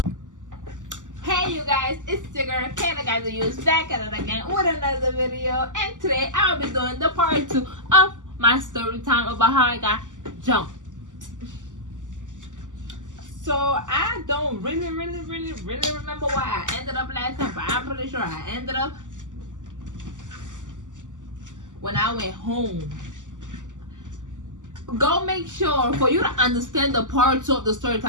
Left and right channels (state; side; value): late; left; 0.87 ms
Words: Hey you guys, it's your girl Kayla Guys the Use back at it again with another video, and today I'll be doing the part 2 of my story time about how I got jumped. So I don't really remember why I ended up last time, but I'm pretty sure I ended up when I went home. Go make sure, for you to understand the part 2 of the story